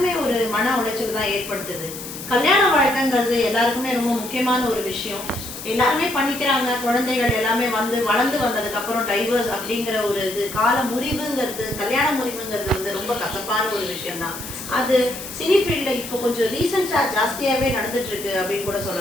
ஒரு மன உளைச்சல் தான் ஏற்படுத்துது. கல்யாண வாழ்க்கைங்கிறது எல்லாருக்குமே ரொம்ப முக்கியமான ஒரு விஷயம். எல்லாருமே பண்ணிக்கிறாங்க, குழந்தைகள் எல்லாமே வந்து வளர்ந்து வந்ததுக்கப்புறம் டைவர்ஸ் அப்படிங்கிற ஒரு இது கால முறிவுங்கிறது, கல்யாண முறிவுங்கிறது வந்து ரொம்ப கசப்பான ஒரு விஷயம்தான். அது சினி ஃபீல்டில் இப்போ கொஞ்சம் ரீசெண்டாக ஜாஸ்தியாகவே நடந்துட்டு இருக்கு அப்படின்னு கூட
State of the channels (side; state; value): left; noise; hiss, 10 dB below the sound